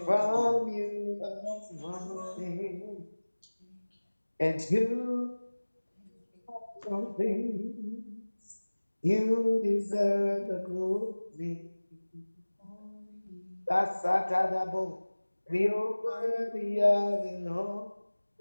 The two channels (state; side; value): inverted; both; correlation -1.00